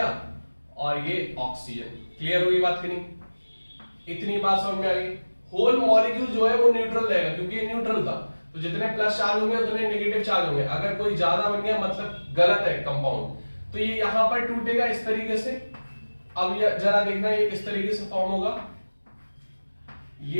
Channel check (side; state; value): both; inverted; correlation -1.00